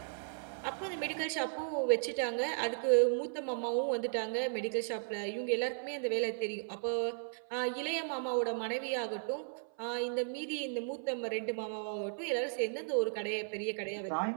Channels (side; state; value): left; silent; 54 dB below the other